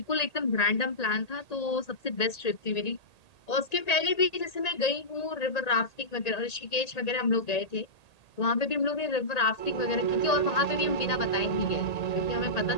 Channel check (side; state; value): right; late; 1.8 ms